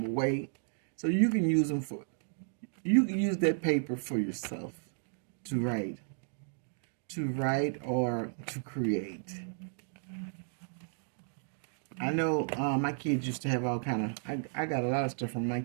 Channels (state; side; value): silent; left; digital silence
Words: away. So you can use them you can use that paper for yourself to write or to create. I know my kids used to have all kind of, I got a lot of stuff from my